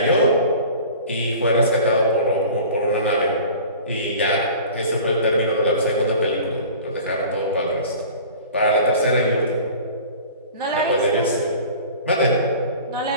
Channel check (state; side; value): inverted; both; correlation -0.42